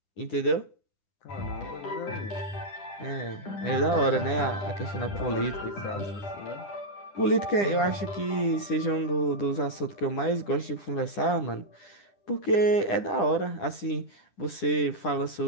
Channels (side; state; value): right; late; 10 ms